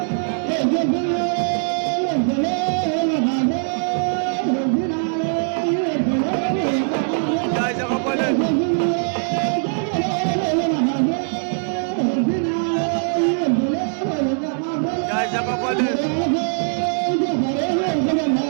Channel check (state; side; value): silent; left; digital silence